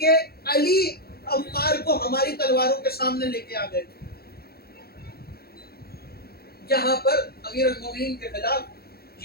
علی عمار کو ہماری تلواروں کے سامنے لے کے آ گئے. جہاں پر امیر المومنین کے خلاف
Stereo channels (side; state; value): right; late; 0.45 ms